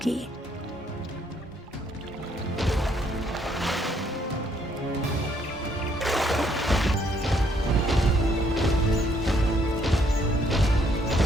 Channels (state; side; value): normal; both; correlation 0.69